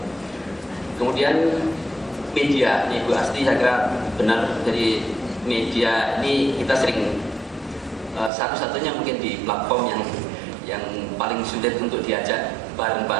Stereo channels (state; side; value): drops out; left; at 8.3 s